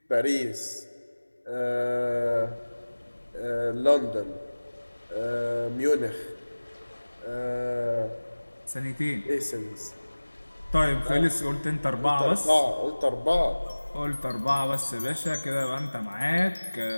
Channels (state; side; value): inverted; both; correlation -1.00